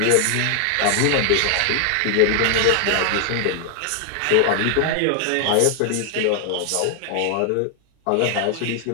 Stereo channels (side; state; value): both; different; correlation 0.00